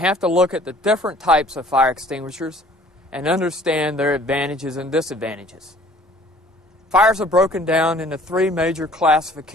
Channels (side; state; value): both; normal; correlation 0.54